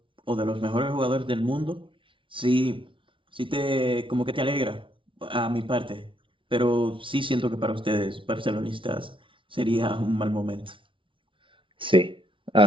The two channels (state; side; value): late; left; 0.25 ms